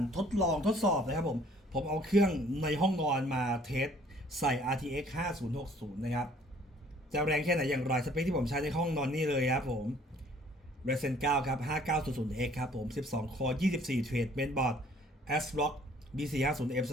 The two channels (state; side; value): normal; both; correlation 0.57